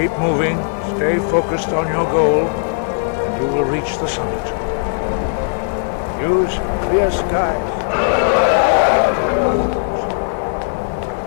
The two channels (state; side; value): silent; right; digital silence